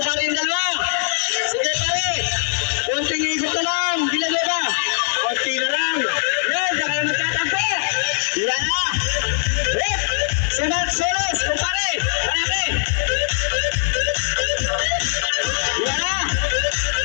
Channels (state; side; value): silent; right; digital silence